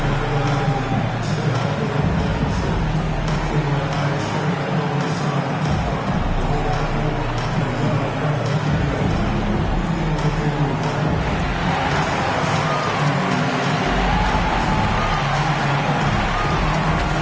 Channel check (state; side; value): identical; both; correlation 1.00